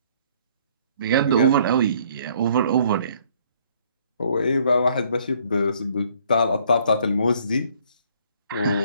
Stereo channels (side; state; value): both; inverted; correlation -0.62